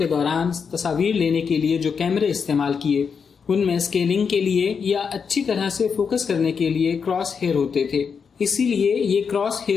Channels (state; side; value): quieter; right; 6.1 dB